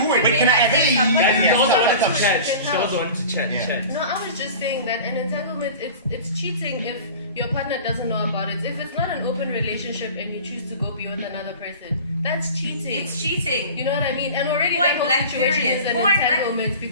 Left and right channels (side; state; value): both; inverted; correlation -0.38